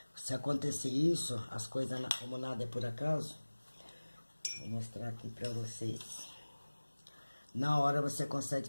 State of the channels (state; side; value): inverted; both; correlation -1.00